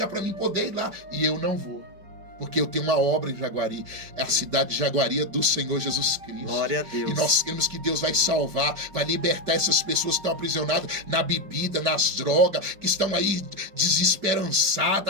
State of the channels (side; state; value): left; late; 5.1 ms